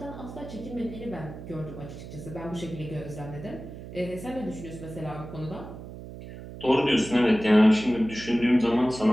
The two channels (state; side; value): noise; right; hum, 12 dB below the sound